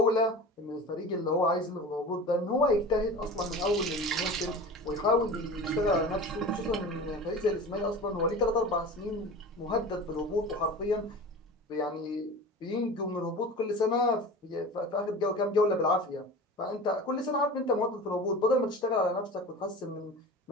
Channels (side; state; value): both; normal; correlation 0.35